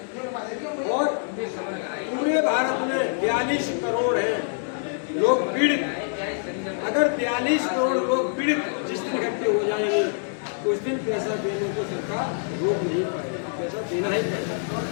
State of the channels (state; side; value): silent; right; digital silence